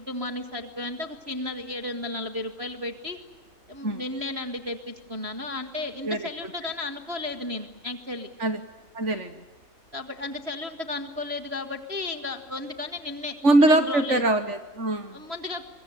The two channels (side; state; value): left; late; 3.4 ms